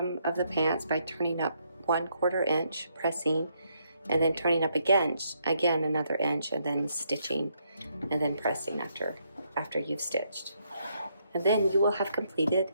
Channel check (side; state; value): both; inverted; correlation -0.74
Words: of the pants by turning up 1/4 inch, pressing, and then turning up again another inch, and then stitching, and then pressing after you've stitched. And then you will have completed